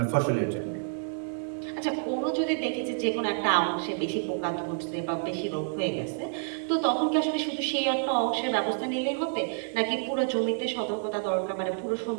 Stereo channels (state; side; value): silent; left; digital silence